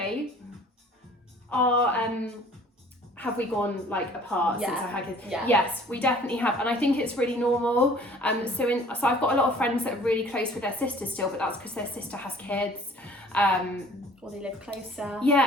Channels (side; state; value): both; normal; correlation 0.52